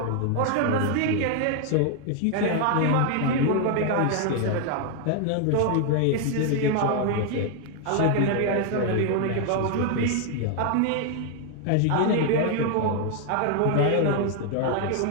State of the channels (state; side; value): different; both; correlation 0.00